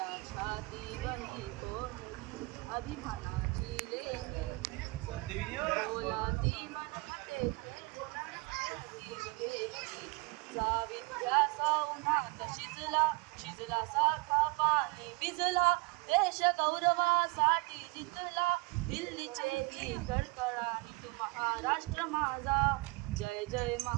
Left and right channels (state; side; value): quieter; left; 25.0 dB